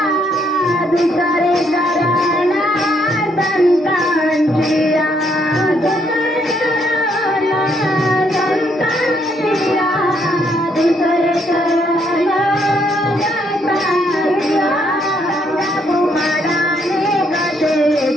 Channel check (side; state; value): both; normal; correlation 0.72